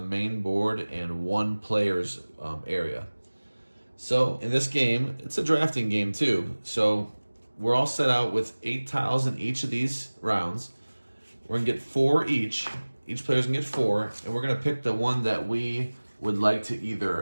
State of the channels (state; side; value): inverted; both; correlation -1.00